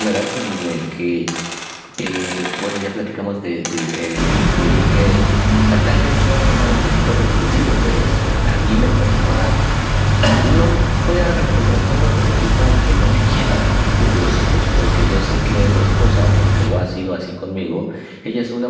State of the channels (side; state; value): both; identical; correlation 1.00